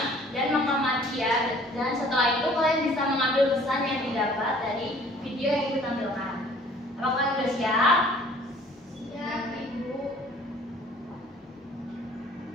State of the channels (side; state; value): both; normal; correlation 0.54